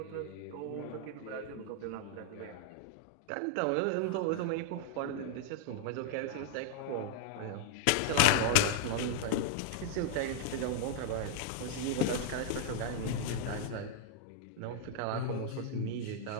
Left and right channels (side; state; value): both; different; correlation -0.01